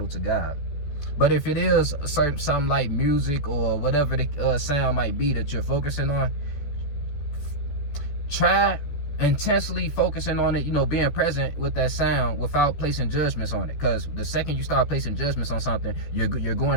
to God. But if it is something like music or whatever the sound might be that you're focusing on, try intensely focusing on it, you know, being present with that sound without placing judgments on it. Because the second you start placing judgments on something, you're going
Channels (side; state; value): right; late; 14 ms